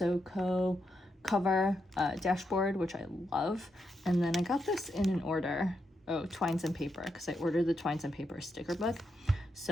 Co. cover dashboard, which I love. And then I got this in an order. Oh, Twines and Paper, because I ordered the Twines and Paper sticker book.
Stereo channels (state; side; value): normal; both; correlation 0.83